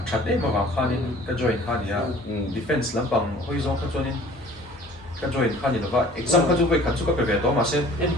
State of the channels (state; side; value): normal; both; correlation 0.50